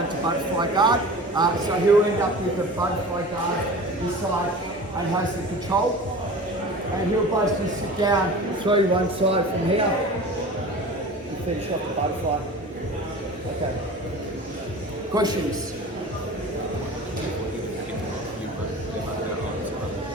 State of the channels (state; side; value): normal; both; correlation 0.37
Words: to butterfly guard. So he'll end up with a butterfly guard this side and has the control. And he'll basically sit down, throw you one side from here and finish off the butterfly. Okay. Questions?